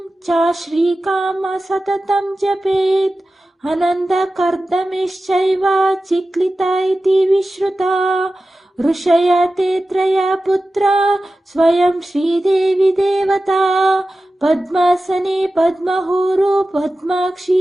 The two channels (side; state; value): both; normal; correlation 0.94